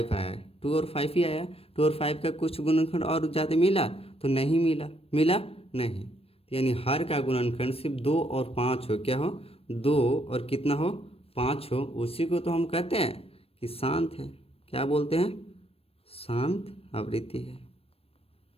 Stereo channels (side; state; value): right; late; 0.28 ms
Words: आया है, 2 और 5 ही आया। 2 और 5 का कुछ गुणनखंड और ज़्यादा मिला तो नहीं मिला, मिला नहीं। तो यानी हर का गुणनखंड सिर्फ 2 और 5 हो, क्या हो 2 और कितना हो 5 हो, उसी को तो हम कहते हैं कि शांत है। क्या बोलते हैं, शांत आवृत्ति है।